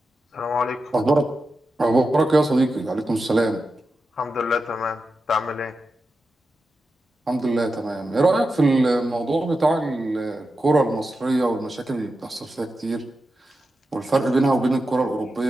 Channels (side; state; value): both; normal; correlation 0.90